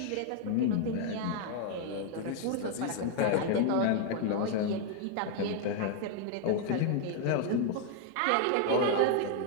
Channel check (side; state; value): both; different; correlation 0.00